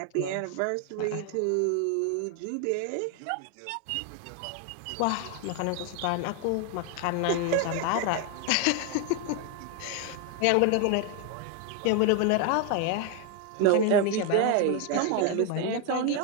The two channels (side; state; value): both; different; correlation 0.01